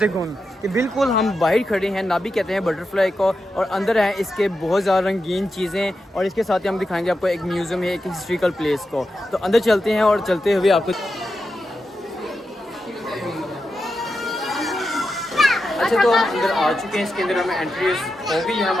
कि बिल्कुल हम बाहर खड़े हैं। नाबी कहते हैं बटरफ्लाई को, और अंदर हैं इसके बहुत ज़्यादा रंगीन चीज़ें, और इसके साथ ही हम दिखाएंगे आपको एक म्यूज़ियम है, एक हिस्ट्रिकल प्लेस को। तो अंदर चलते हैं और चलते हुए आपको अच्छा तो हम अंदर आ चुके हैं। इसके अंदर हमें एंट्री हो गई है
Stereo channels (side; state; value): both; normal; correlation 0.89